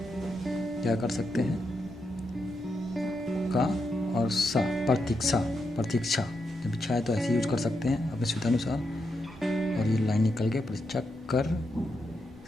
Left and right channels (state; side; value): normal; both; correlation 0.84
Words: क्या कर सकते हैं, का और सा, प्रतीक्षा, प्रतीक्षा जब इच्छा है तो ऐसे यूज कर सकते हैं अपने सुविधानुसार। और ये लाइन निकल के प्रतीक्षा कर